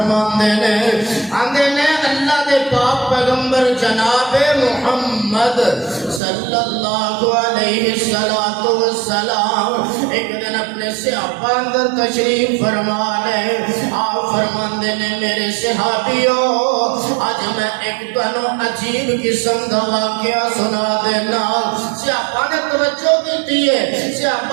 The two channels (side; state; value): left; drops out; at 6.2 s